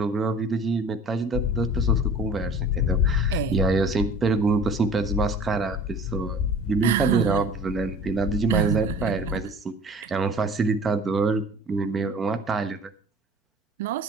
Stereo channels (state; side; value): normal; both; correlation 0.44